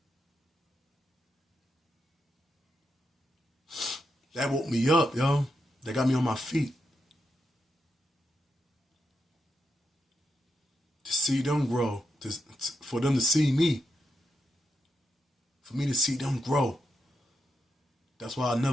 That woke me up, yo. That got me on my feet. To see them grow, for them to see me. For me to see them grow. That's why I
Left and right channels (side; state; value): both; normal; correlation 0.85